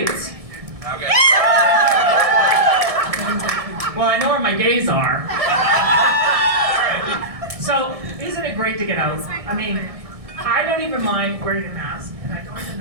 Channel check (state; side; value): late; left; 1.6 ms